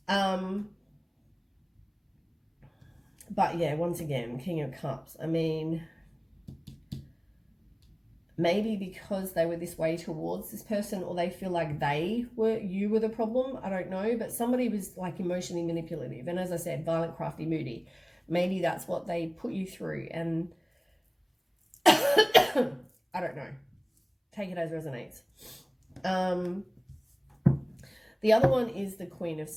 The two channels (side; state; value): both; identical; correlation 1.00